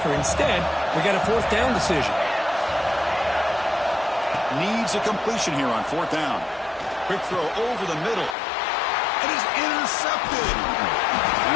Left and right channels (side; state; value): right; drops out; at 8.3 s